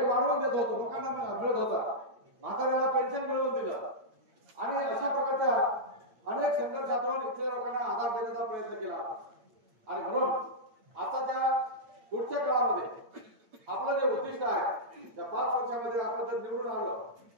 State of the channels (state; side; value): late; left; 8.9 ms